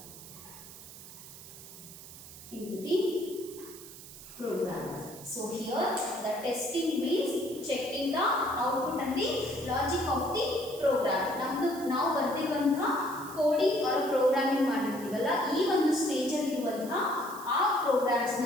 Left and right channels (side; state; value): right; noise; hiss, 15 dB below the sound